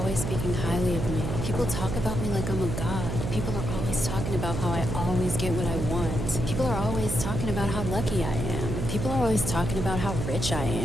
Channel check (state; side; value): noise; right; hum, 3 dB below the sound